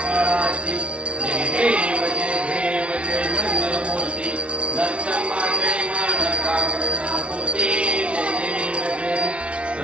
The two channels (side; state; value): left; late; 0.060 ms